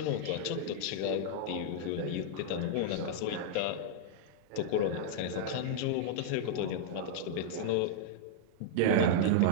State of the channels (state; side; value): different; both; correlation -0.01